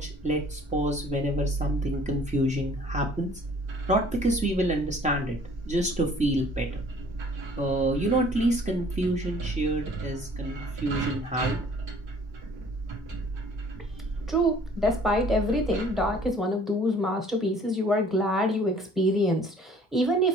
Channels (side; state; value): both; normal; correlation 0.54